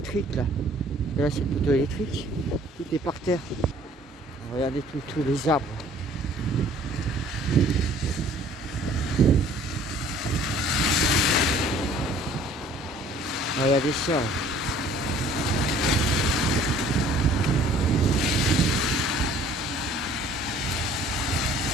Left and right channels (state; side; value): normal; both; correlation 0.54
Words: là. Et là c'est le poteau électrique. Tout est par terre. Regardez tous les arbres. Regardez ça.